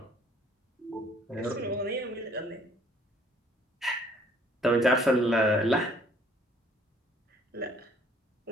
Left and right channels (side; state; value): both; normal; correlation 0.60